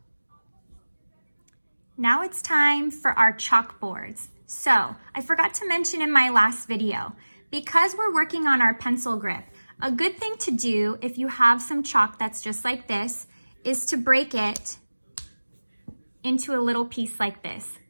Now it's time for our chalkboards. So I forgot to mention in my last video, because we're working on our pencil grip, a good thing to do if you have some chalk that's just like this is to break it into a little piece like this.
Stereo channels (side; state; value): both; inverted; correlation -1.00